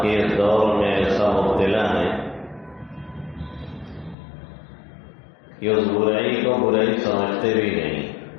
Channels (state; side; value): drops out; right; at 4.2 s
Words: کے اس دور میں ایسا مبتلا ہیں کہ اس برائی کو برائی سمجھتے بھی نہیں.